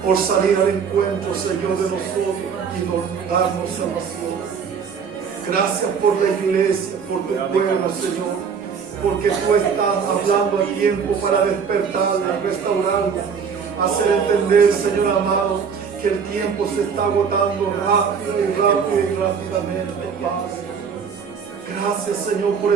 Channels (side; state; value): left; quieter; 6.4 dB